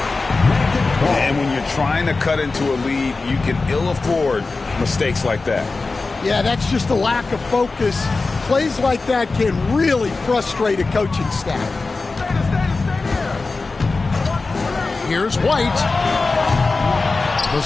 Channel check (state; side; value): quieter; right; 3.8 dB